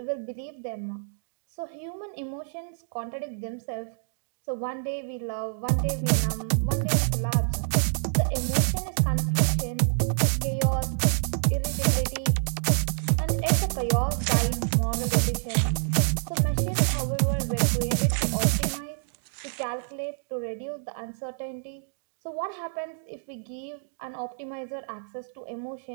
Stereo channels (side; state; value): left; silent; digital silence